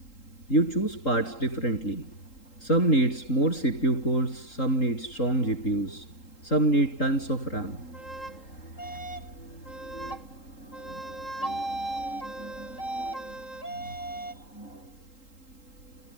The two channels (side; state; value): right; late; 3.8 ms